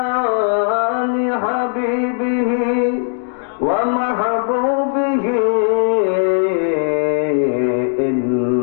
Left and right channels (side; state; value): right; silent; digital silence